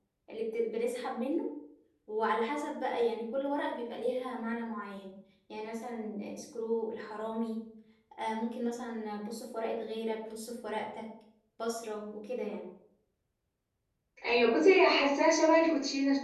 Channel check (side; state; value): both; identical; correlation 1.00